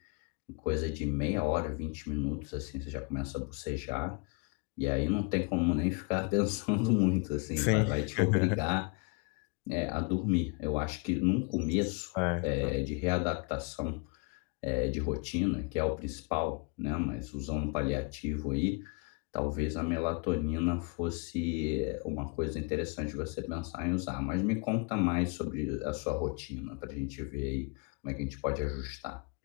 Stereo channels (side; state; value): right; quieter; 32.5 dB